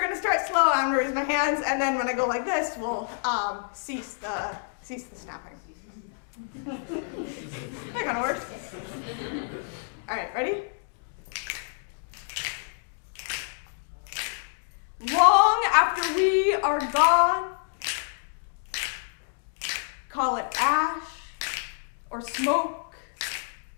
gonna start slow, I'm gonna raise my hands, and then when I go like this, we'll cease the snapping. That kind of works. All right, ready? Long after we are gone, call it ash or smoke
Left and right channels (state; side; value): silent; right; digital silence